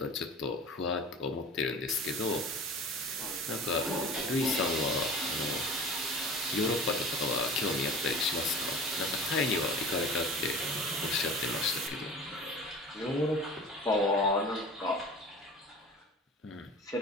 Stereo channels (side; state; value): both; normal; correlation 0.38